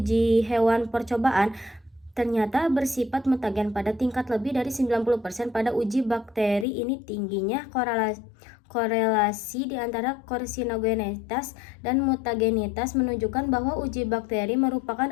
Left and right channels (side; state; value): right; drops out; at 6.7 s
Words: hewan percobaan ternyata bersifat mutagen pada tingkat lebih dari 90%. Pada uji bakteri ini tingginya korelasi di antara karsinogenitas dan mutagenitas menunjukkan bahwa uji bakteri merupakan